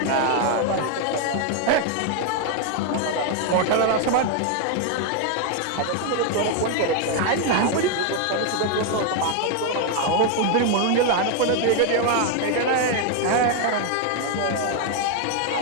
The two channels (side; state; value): both; different; correlation 0.00